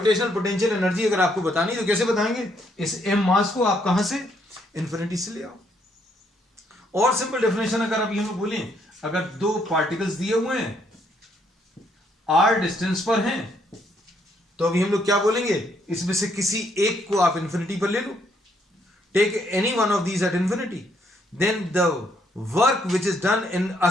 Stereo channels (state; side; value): normal; both; correlation 0.71